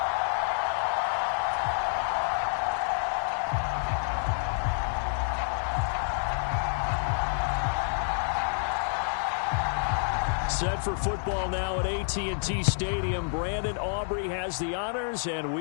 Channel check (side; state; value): right; silent; 59 dB below the other